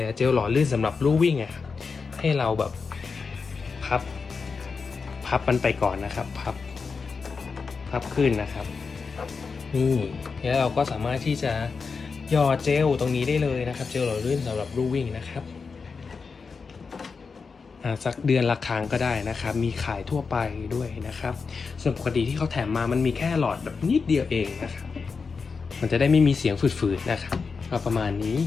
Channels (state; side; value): quieter; right; 5.0 dB